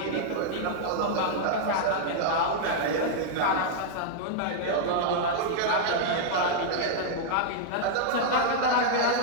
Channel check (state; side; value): different; both; correlation -0.01